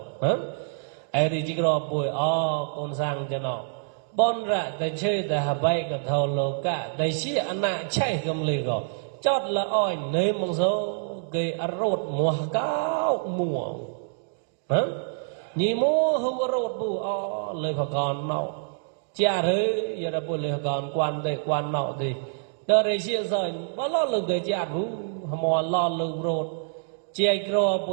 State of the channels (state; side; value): silent; left; digital silence